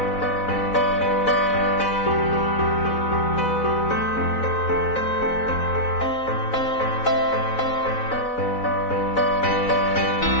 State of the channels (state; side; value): late; right; 4.0 ms